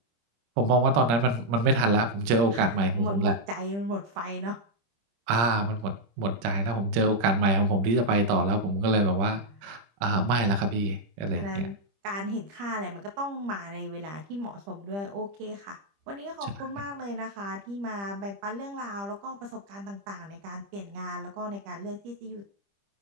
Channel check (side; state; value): left; late; 26 ms